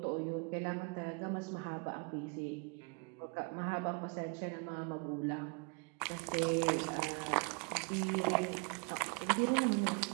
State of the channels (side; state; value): left; quieter; 33.1 dB